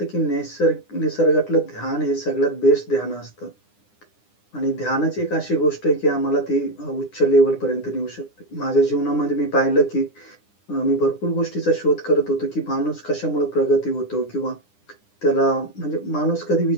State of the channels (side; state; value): right; late; 9.8 ms